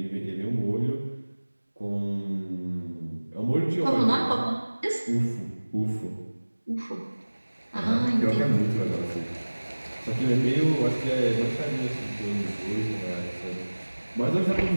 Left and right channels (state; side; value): inverted; both; correlation -1.00